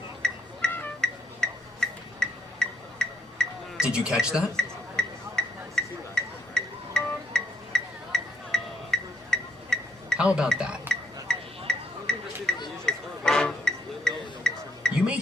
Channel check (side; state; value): both; normal; correlation 0.80